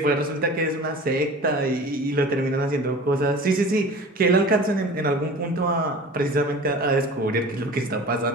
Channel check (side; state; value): both; normal; correlation 0.39